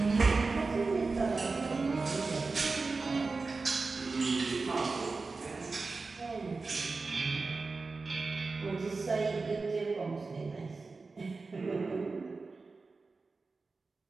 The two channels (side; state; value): left; quieter; 4.0 dB